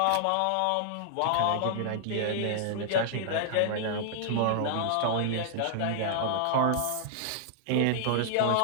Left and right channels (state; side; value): different; both; correlation -0.01